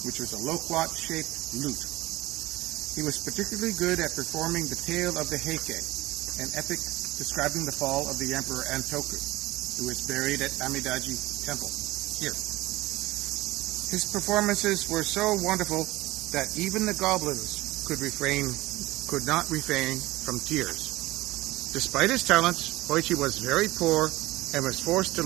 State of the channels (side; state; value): left; quieter; 18.8 dB